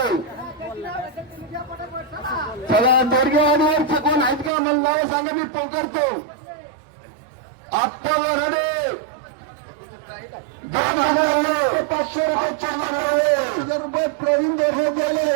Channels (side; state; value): left; drops out; at 4.5 s